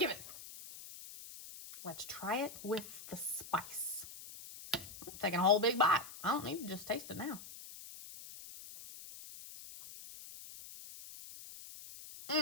Let's try it with the spice. I'm taking a whole big bite. I don't need to just taste it now.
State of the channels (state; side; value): noise; left; hiss, 14 dB below the sound